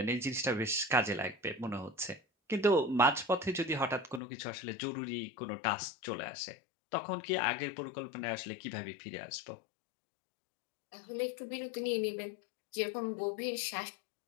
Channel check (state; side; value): drops out; right; at 4.2 s